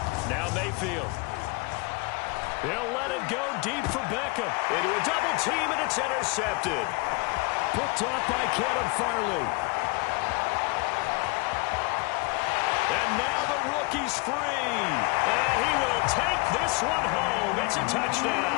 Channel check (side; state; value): right; quieter; 28.7 dB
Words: Now Mayfield. He'll let it go deep for Beckham. Into a double team, and it's intercepted. Picked off by Kevin Farley. And now the rookie's free. And he will take this one home. It's a